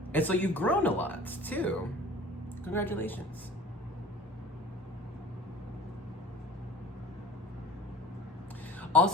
and so you've grown a lot too. Congratulations.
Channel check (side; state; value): both; normal; correlation 0.44